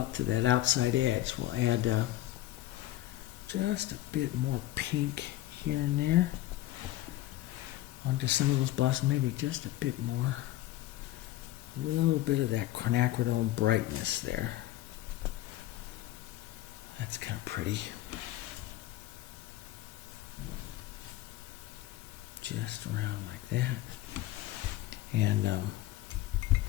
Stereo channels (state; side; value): quieter; right; 15.4 dB